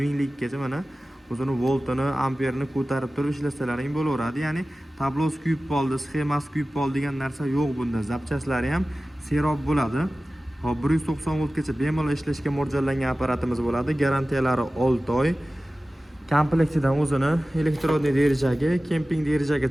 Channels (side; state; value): both; normal; correlation 0.96